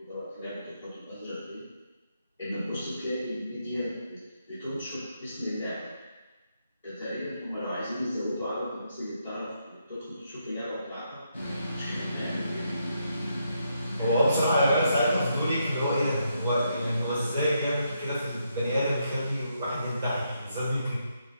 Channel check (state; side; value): inverted; both; correlation -0.79